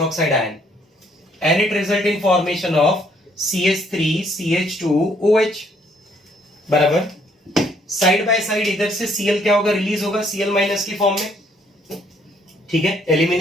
ion, and it result in formation of CH3 CH2OH, बराबर। साइड बाय साइड इधर से Cl क्या होगा, रिलीज होगा Cl माइनस की फॉर्म में, ठीक है।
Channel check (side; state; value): both; normal; correlation 0.67